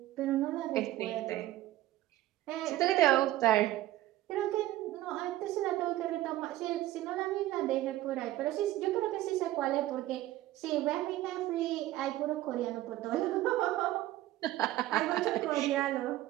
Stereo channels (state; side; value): quieter; left; 15.4 dB